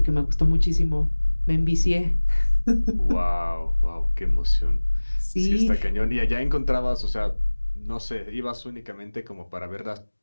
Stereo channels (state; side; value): inverted; both; correlation -1.00